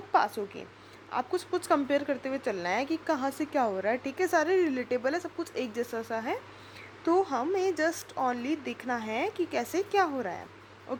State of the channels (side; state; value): both; identical; correlation 1.00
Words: पास होगी। आपको सब कुछ कंपेयर करते हुए चलना है कि कहाँ से क्या हो रहा है। ठीक है, सारे रिलेटेबल है, सब कुछ एक जैसा सा है, तो हमें जस्ट ओनली देखना है कि कैसे क्या हो रहा है।